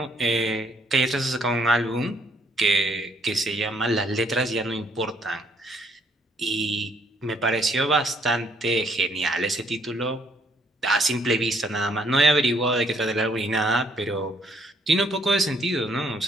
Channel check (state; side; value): normal; both; correlation 0.67